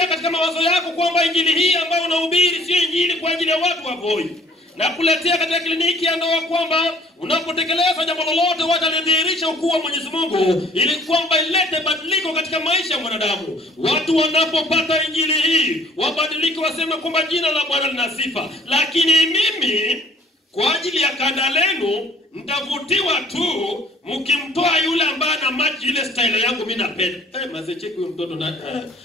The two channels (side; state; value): both; normal; correlation 0.55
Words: katika mawazo yako kwamba injili hii ambayo unahubiri sio injili kwa ajili ya watu wa Voi. Na kuletea katika kliniki ya ndoa kwamba unapotekeleza jambo lolote watalidhihirisha ukuu wa Mwenyezi Mungu ili kwamba ilete badiliko katika maisha ya mwanadamu. Watu wanapopata injili hii wabadilike, waseme kwamba jina la Bwana lina sifa. Lakini mimi kwa ajili ya kanda lenu mtavutiwa tu mkimtoa yule ambaye ana maji ile style yangu mimi napenda. Maze cheki huyo mtoto na